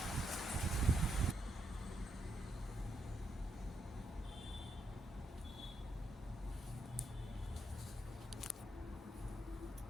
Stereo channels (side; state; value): both; normal; correlation 0.80